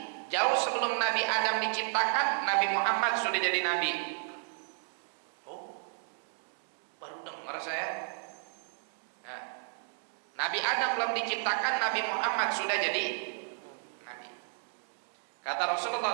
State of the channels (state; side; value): silent; left; 56 dB below the other